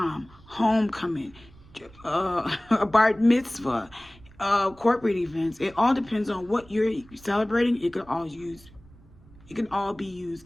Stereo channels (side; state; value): right; noise; rumble, 24 dB below the sound